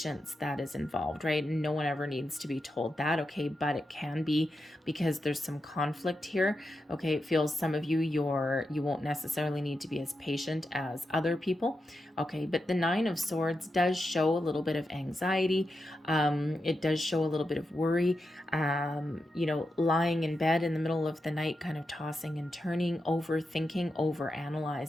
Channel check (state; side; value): normal; both; correlation 0.88